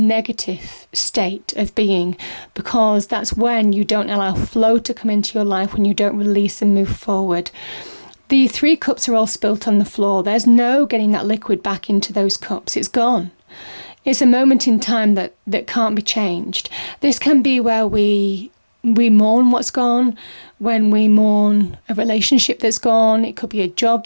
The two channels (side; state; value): both; inverted; correlation -1.00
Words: state of being, because that's when you don't allow flow to come into your life, when you don't release and move forward. The 3 cups are all spilt on the floor. There's no getting that liquid back into those cups. It's gone. It's a moment in time that can't be changed. This can be where we mourn what's gone, when we mourn a relationship that's gone. It could be a job